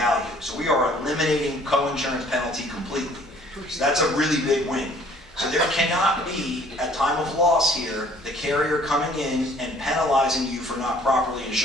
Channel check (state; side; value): normal; both; correlation 0.56